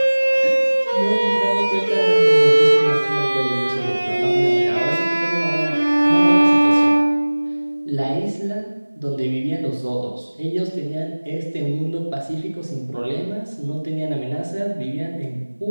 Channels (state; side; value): inverted; both; correlation -1.00